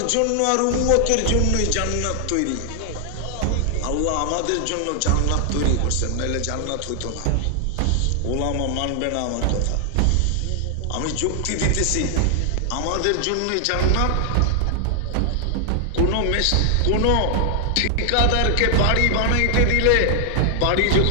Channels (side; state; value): both; different; correlation 0.00